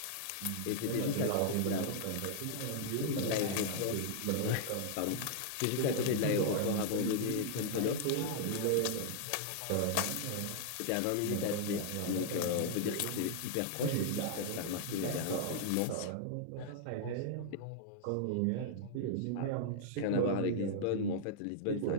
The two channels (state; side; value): different; both; correlation -0.01